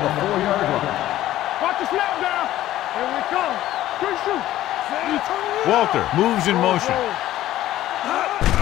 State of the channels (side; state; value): right; quieter; 14.1 dB